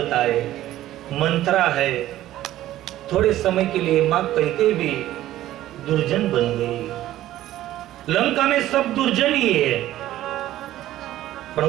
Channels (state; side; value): quieter; left; 14.1 dB